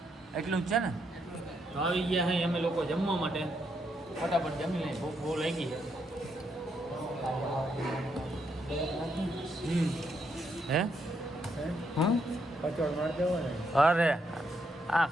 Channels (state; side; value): normal; both; correlation 0.77